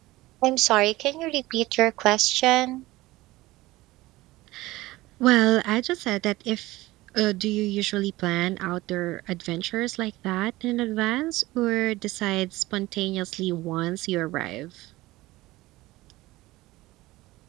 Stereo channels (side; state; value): left; quieter; 18.8 dB